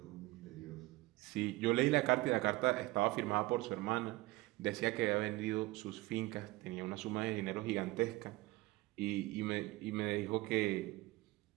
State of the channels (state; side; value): quieter; left; 20.1 dB